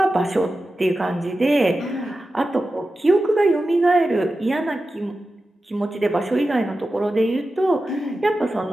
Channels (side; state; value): both; normal; correlation 0.93